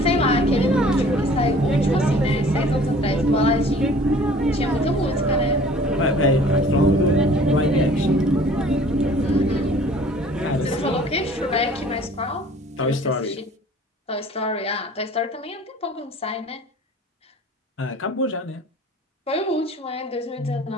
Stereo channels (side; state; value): both; normal; correlation 0.50